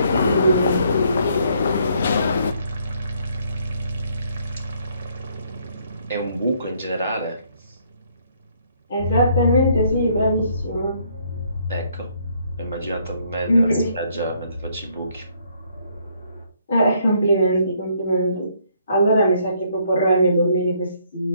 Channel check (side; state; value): both; inverted; correlation -0.67